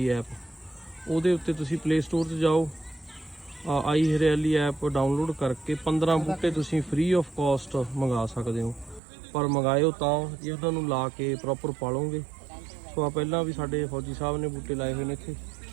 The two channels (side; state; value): left; drops out; at 9.0 s